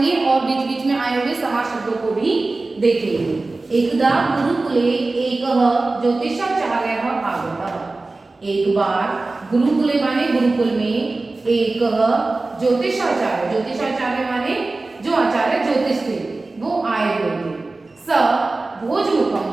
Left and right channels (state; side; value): quieter; left; 3.3 dB